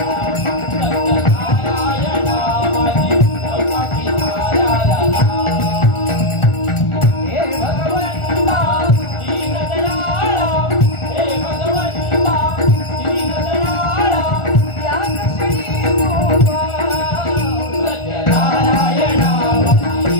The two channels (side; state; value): right; late; 1.4 ms